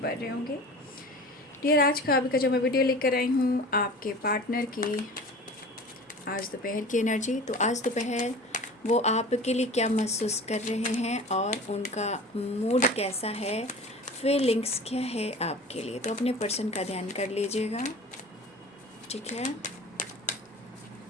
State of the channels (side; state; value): both; normal; correlation 0.38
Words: रहे होंगे। डियर, आज का अभी का जो मैं वीडियो लेकर आई हूँ आपके पार्टनर की आज दोपहर की एनर्जी। तो आज दोपहर वो आपके लिए क्या महसूस कर रहे हैं और उनका मूड कैसा है, फीलिंग्स क्या है आपके लिए। तो अपने पर्सन का ध्यान कर लीजिएगा, ठीक है।